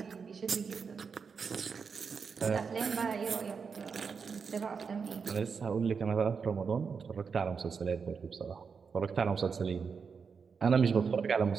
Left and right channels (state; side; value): quieter; left; 5.7 dB